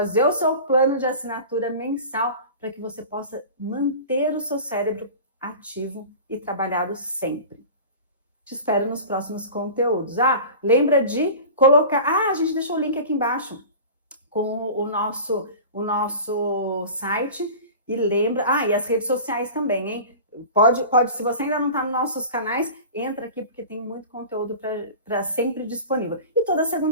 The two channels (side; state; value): both; inverted; correlation -0.36